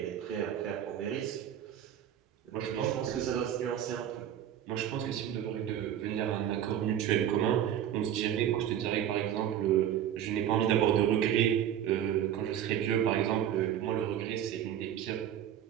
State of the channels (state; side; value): quieter; left; 10.3 dB